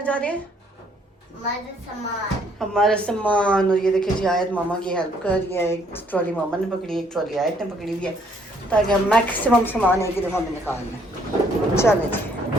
जा रहे हैं? हमारा सामान। और ये देखिए जी, आयत मामा की हेल्प कर रही है। एक ट्रॉली मामा ने पकड़ी, एक ट्रॉली आयत ने पकड़ी हुई है, ताकि हम मैक्सिमम सामान एक ही दफ़ा में निकाल लें। चले जी,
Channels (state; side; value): normal; both; correlation 0.66